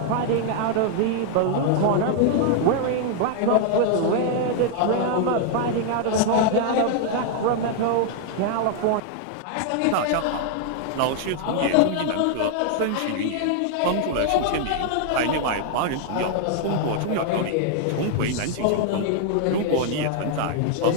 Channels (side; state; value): both; different; correlation 0.00